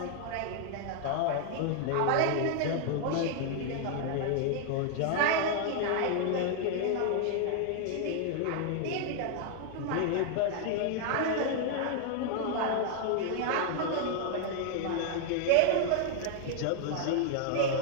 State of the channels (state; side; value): different; both; correlation 0.00